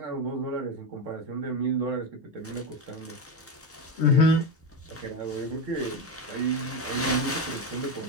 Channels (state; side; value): normal; both; correlation 0.14